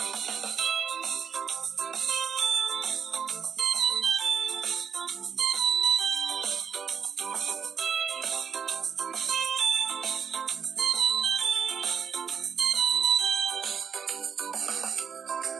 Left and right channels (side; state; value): left; quieter; 6.9 dB